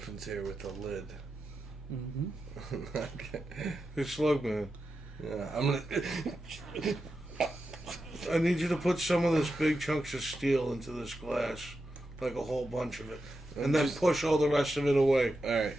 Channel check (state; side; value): normal; both; correlation 0.89